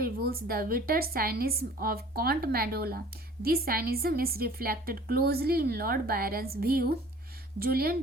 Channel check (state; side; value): normal; both; correlation 0.49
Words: the bitter cynicism of Count Mandola. This cynicism is reflected closely in Lord Byron's view. Julian